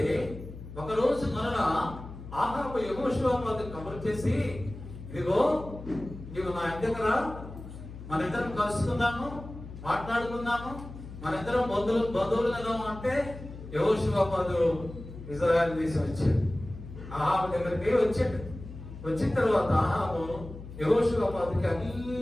ఒకరోజు మరలా ఆహాబు యెహోషువాపాతు కబురు చేసి, ఇదిగో నీవు నా ఇంటికి రా, మన ఇద్దరం కలుసుకుందాము, మాట్లాడుకుందాము, మన ఇద్దరం బంధువులు కదా అంటే యెహోషువాపాతు ఇశ్రాయేలు దేశం వచ్చాడు. ఆహాబు దగ్గరికి వచ్చాడు. వచ్చిన తర్వాత ఆహాబు యెహోషువాపాతుకి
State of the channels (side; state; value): left; noise; hum, 13 dB below the sound